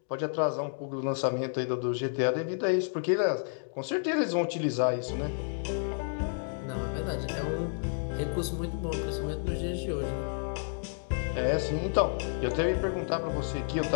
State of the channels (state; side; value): silent; right; digital silence